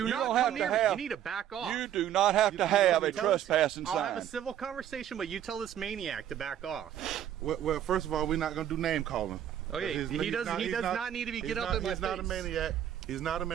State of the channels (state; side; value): quieter; left; 10.7 dB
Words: You not don't come have to near me. have- You need to back off. You do not have to have a trespassing I'll have a sign. civil conversation, but you tell this maniac to back off. Well, first of all, we're not gonna do name calling. Okay, he does not need to be get up in my face. He's not a maniac. He's not a